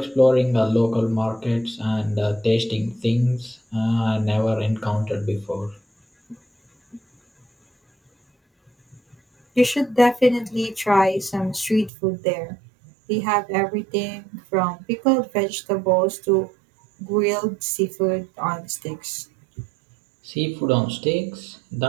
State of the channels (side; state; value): left; drops out; at 11.9 s